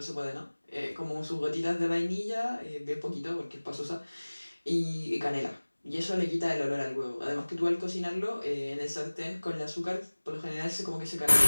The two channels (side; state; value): both; inverted; correlation -1.00